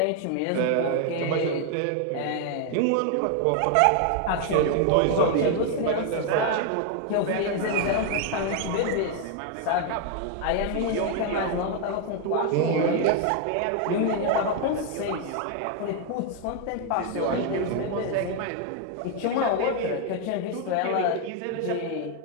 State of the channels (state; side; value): different; both; correlation 0.00